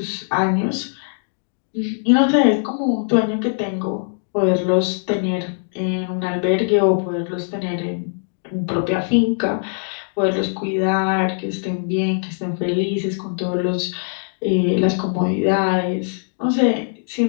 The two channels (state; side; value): silent; right; digital silence